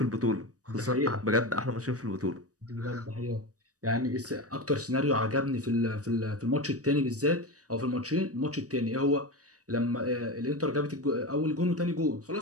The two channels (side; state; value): left; late; 0.66 ms